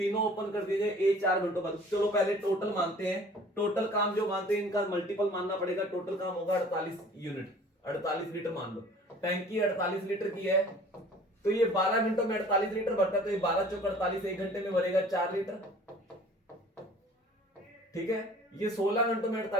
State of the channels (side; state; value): both; normal; correlation 0.49